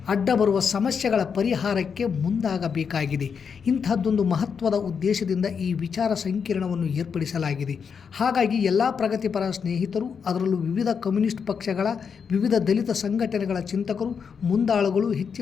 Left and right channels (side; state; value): right; quieter; 6.4 dB